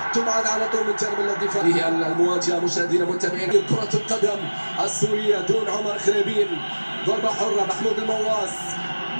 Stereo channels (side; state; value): both; inverted; correlation -1.00